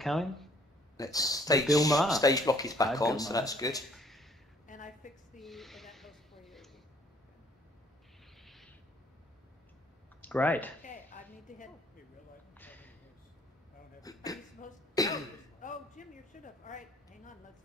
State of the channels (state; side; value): normal; both; correlation 0.61